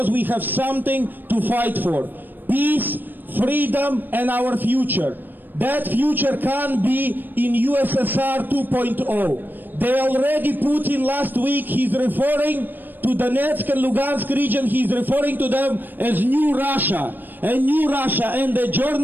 we have something to fight for. Peace, freedom, and our future. That future can be in USSR 2.0. They already, Putin last week, he's referring to Donetsk and Lugansk region, he's referring to them as New Russia. And New Russia, and the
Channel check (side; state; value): left; late; 0.091 ms